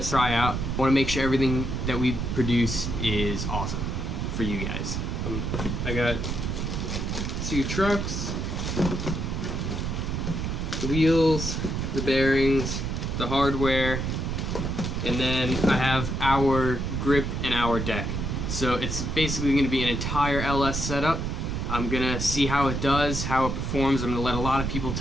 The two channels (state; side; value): noise; right; rumble, 2 dB below the sound